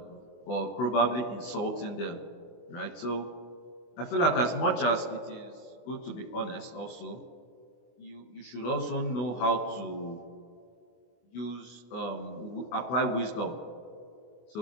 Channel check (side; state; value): right; late; 24 ms